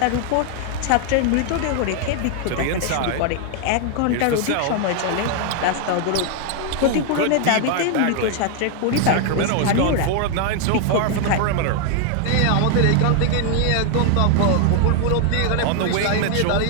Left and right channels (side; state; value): both; different; correlation 0.00